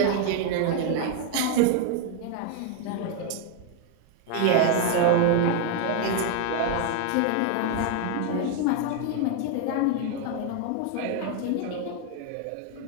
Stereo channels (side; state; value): both; different; correlation 0.01